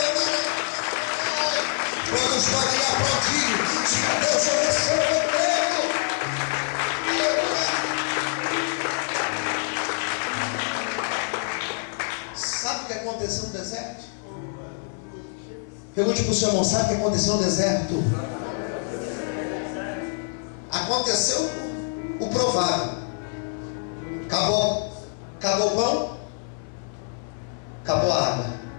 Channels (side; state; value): right; silent; 57 dB below the other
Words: Quando podem aplaudir, diga: Deus, eu recebo o emprego. Sabe o que aconteceu no deserto? Pergunte para o seu irmão: sabe o que aconteceu no deserto? Aconteceu o provável. Acabou o pão, acabou a água.